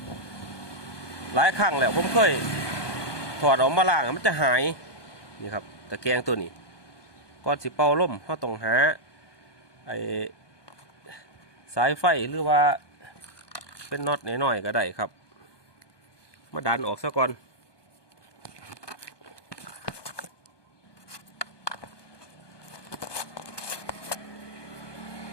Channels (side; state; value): right; late; 1.2 ms